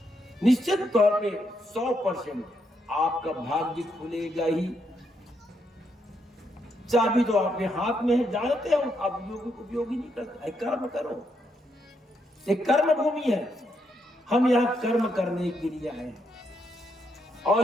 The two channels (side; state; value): both; normal; correlation 0.78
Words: निश्चित तौर पे 100% आपका भाग्य खुलेगा ही। चाबी तो आपके हाथ में है, जानते हो आप उपयोगी नहीं करते। कर्म करो, एक कर्म भूमि है। हम यहाँ कर्म करने के लिए आए,